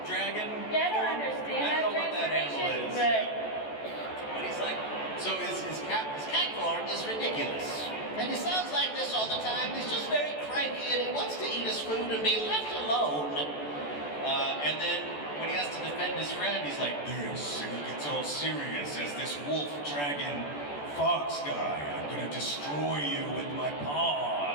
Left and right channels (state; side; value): late; right; 14 ms